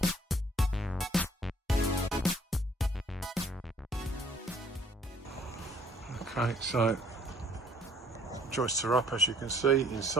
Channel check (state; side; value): normal; both; correlation 0.59